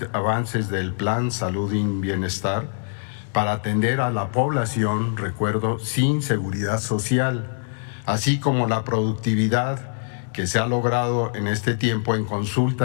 avances del Plan Salud y Bienestar para atender a la población, recuerdo, sin seguridad social, así como la productividad que se ha logrado en este tiempo en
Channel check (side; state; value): right; silent; digital silence